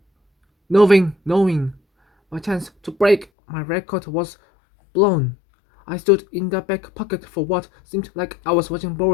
knowing my chance to break my record was blown. I stood in the back pocket for what seemed like I was watching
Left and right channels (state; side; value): drops out; right; at 3.2 s